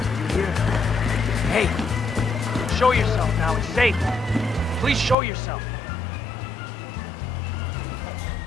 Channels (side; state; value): right; drops out; at 5.2 s